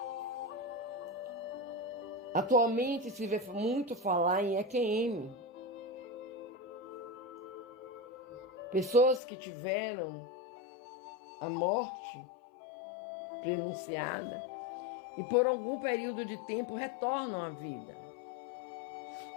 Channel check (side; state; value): right; drops out; at 9.2 s